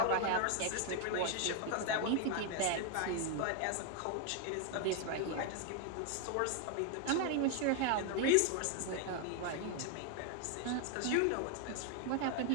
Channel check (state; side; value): different; both; correlation 0.01